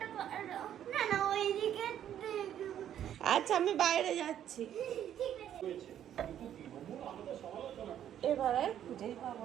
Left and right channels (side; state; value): left; quieter; 10.5 dB